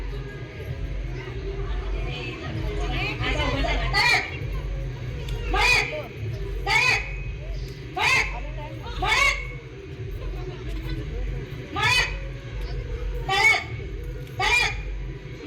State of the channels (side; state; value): both; identical; correlation 1.00